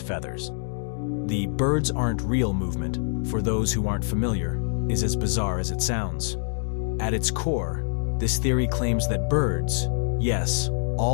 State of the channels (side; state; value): right; silent; digital silence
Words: feathers. The birds aren't real movement, for those who aren't familiar, is as bizarre as it sounds. At its core, this theory claims that birds, yes,